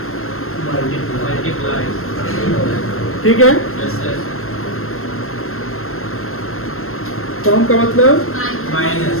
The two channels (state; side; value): late; right; 0.62 ms